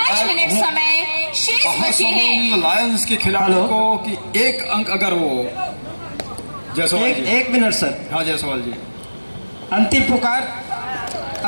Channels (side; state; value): both; inverted; correlation -1.00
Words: मिनट समय शेष बचे हैं। लायंस के खिलाड़ियों को कि एक अंक अगर वो जायसवाल जी। एक मिनट सर। हाँ जायसवाल जी। अंतिम पुकार